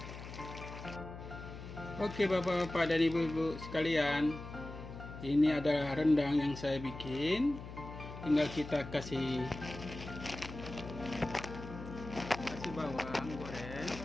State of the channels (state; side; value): noise; left; hum, 11 dB below the sound